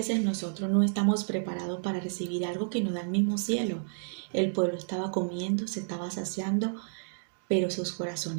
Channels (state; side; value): silent; left; digital silence